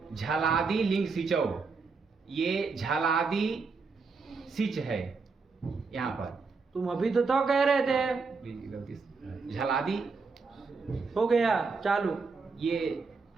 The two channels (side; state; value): left; quieter; 4.6 dB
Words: झलादि लिंग सिचौ। ये झलादि सिच है यहाँ पर। तुम अभी तो कह रहे थे। गलती से झलादि हो गया चालू। ये